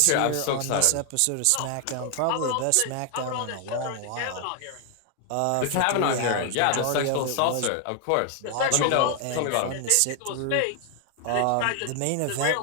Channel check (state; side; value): different; both; correlation 0.00